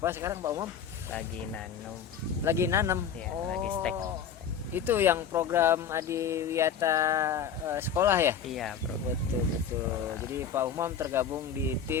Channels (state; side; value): quieter; right; 7.4 dB